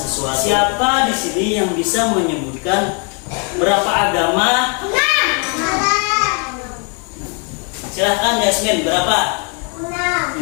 Siapa di sini yang bisa menyebutkan berapa agama? Silahkan Yasmin, berapa?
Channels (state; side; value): quieter; right; 37.6 dB